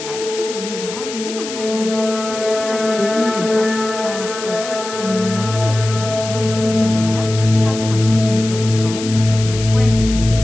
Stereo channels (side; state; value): left; noise; hiss, 10 dB below the sound